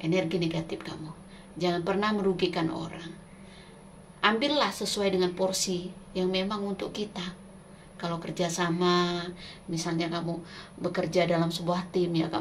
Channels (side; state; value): both; identical; correlation 1.00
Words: energi negatif kamu. Jangan pernah merugikan orang. Ambillah sesuai dengan porsi yang memang untuk kita. Kalau kerjasama, misalnya kamu bekerja dalam sebuah tim, ya